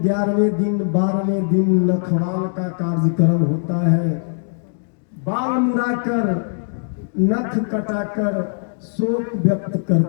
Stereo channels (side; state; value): right; silent; digital silence